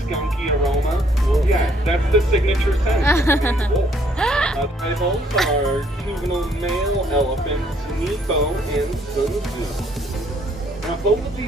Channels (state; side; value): normal; both; correlation 0.66